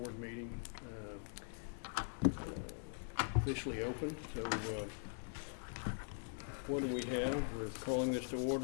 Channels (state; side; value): silent; right; digital silence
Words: meeting, officially open. So, what do we have? We're calling this to